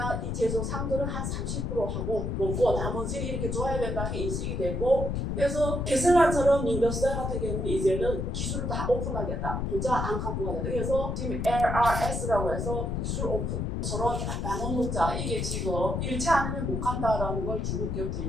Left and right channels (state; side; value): noise; left; rumble, 1 dB below the sound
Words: 이 제조 상들은 한 30% 하고 먹고 나머지는 이렇게 줘야 된다는 게 인식이 되고, 그래서 테슬라처럼 인더스트리 같은 경우는 이제는 기술을 다 오픈하겠다. 혼자 안 갖고 가겠다. 그래서 지금 LRS라고 해서 기술 오픈. 서로 나눠 먹자. 이게 지금 이렇지 않으면 못 간다라는 걸 중국